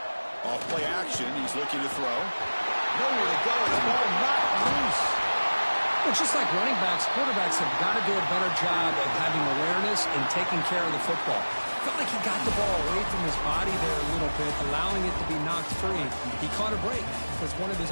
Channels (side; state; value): both; inverted; correlation -1.00